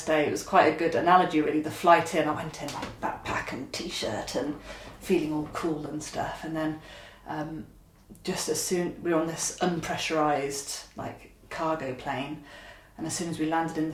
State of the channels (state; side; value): identical; both; correlation 1.00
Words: day. It was quite a good analogy, really. The flight in, I went in like backpack and t-shirt and feeling all cool and stuff, and then just as soon we were on this unpressurized like cargo plane, and as soon as we landed in